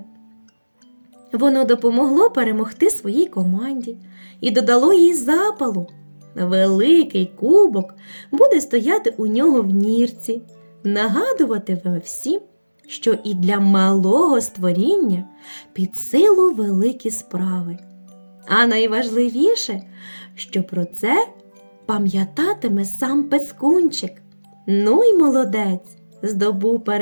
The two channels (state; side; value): inverted; both; correlation -1.00